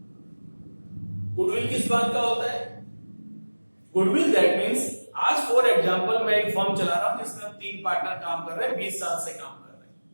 गुडविल किस बात का होता है, गुडविल दैट मींस, आज फॉर एग्जांपल मैं एक फर्म चला रहा हूं जिसमें हम 3 पार्टनर काम कर रहे हैं, 20 साल से काम कर रहे हैं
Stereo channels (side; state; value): both; inverted; correlation -1.00